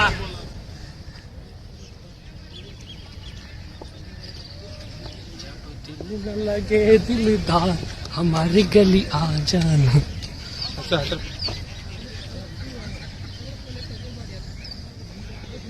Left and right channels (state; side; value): identical; both; correlation 1.00